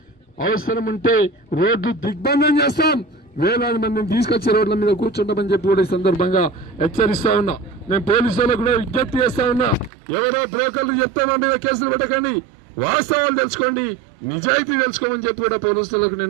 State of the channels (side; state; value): left; drops out; at 9.9 s